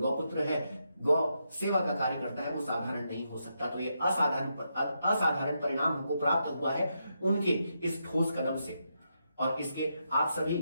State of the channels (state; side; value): inverted; both; correlation -0.83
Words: है, गौ सेवा का कार्य करता है, वो साधारण नहीं हो सकता। तो ये असाधारण परिणाम हमको प्राप्त हुआ है उनके इस ठोस कदम से और इसके आप सभी